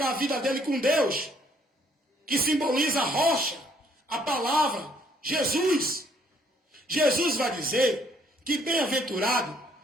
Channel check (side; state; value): both; normal; correlation 0.65